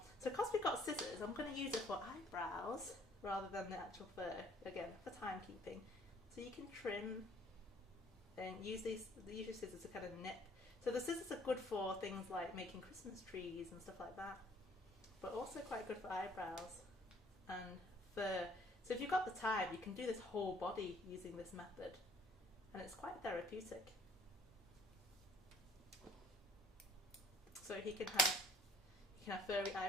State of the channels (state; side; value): normal; both; correlation 0.58